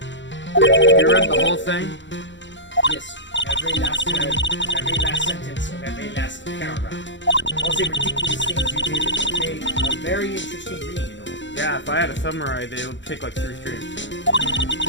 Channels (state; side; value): late; right; 0.54 ms